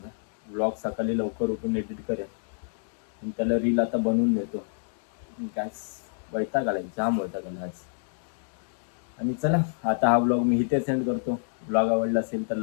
व्लॉग सकाळी लवकर उठून एडिट करेन आणि त्याला रील आता बनवून देतो. काय वैताग आला, जाम वैताग आला आज. आणि चला आता हा ब्लॉग मी इथे सेंड करतो. ब्लॉग आवडला असेल तर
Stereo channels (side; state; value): right; silent; digital silence